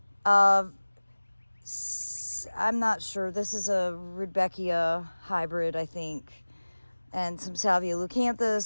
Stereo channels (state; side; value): inverted; both; correlation -1.00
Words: I'm not sure. This is a Rudbeckia hybrid, I think. And some Salvia leucanthus,